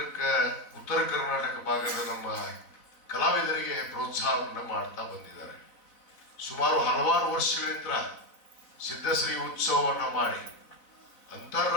ಉತ್ತರ ಕರ್ನಾಟಕ ಭಾಗದ ನಮ್ಮ ಕಲಾವಿದರಿಗೆ ಪ್ರೋತ್ಸಾಹವನ್ನು ಮಾಡ್ತಾ ಬಂದಿದ್ದಾರೆ. ಸುಮಾರು ಹಲವಾರು ವರ್ಷಗಳಿಂದ ಸಿದ್ಧಶ್ರೀ ಉತ್ಸವವನ್ನು ಮಾಡಿ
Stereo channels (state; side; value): late; right; 4.0 ms